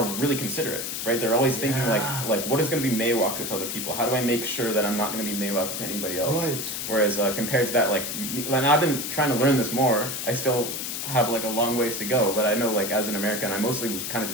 really considerate, right? They're always thinking Yeah. like what is going to be meiwaku to other people? How do I make sure that I'm not going to be meiwaku to anybody else? Right. Whereas compared to that, and I've been trying to learn this more. I still have like a long ways to go, but I know like as an American, I mostly was kind of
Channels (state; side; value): noise; left; hiss, 4 dB below the sound